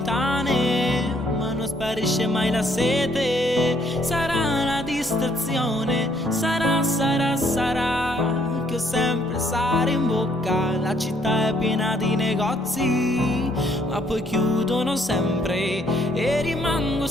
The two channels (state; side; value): normal; both; correlation 0.67